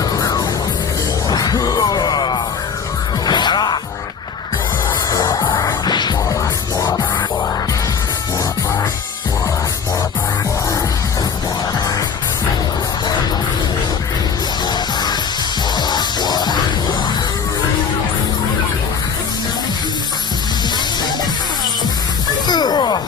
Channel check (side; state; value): right; quieter; 6.3 dB